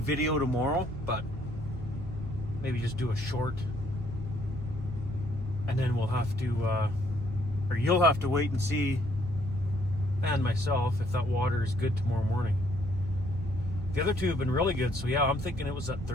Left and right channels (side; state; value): both; normal; correlation 0.67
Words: tomorrow, but maybe just do a short, and then we'll have to, or you'll have to wait and see, and myself, if that water is good tomorrow morning. The other two have been really good, so yeah, I'm thinking it was that